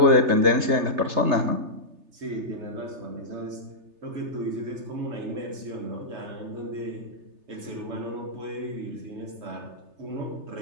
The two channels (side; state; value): left; late; 3.3 ms